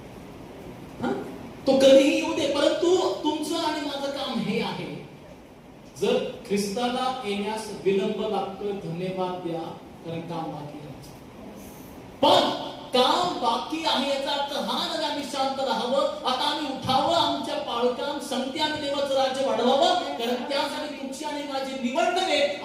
तो कधीही येऊ दे, परंतु तुमचं आणि माझं काम हे आहे, जर ख्रिस्ताला येण्यास विलंब लागतोय, धन्यवाद द्या, कारण काम बाकी आहे. पण काम बाकी आहे याचा अर्थ हा नाही आम्ही शांत राहावं. आता आम्ही उठावं, आमच्या पाळकाम संगती आणि देवाचं राज्य वाढवावं, कारण त्यासाठी तुमची आणि माझी निवड नव्हे,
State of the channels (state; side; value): identical; both; correlation 1.00